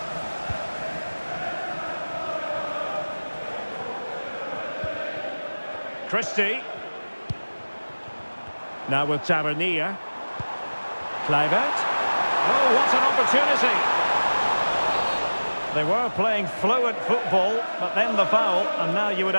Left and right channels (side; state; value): both; inverted; correlation -1.00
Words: Christie. Now with Tavernier. Kluivert. Oh, what an opportunity! They were playing fluid football, but then the foul, and now you would